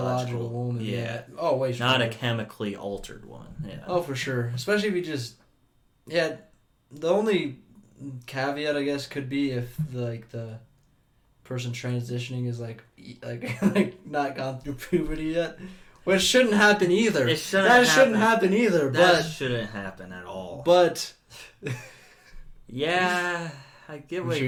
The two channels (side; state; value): both; identical; correlation 1.00